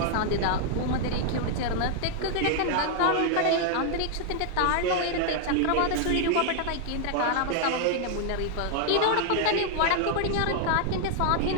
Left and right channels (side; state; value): both; different; correlation 0.00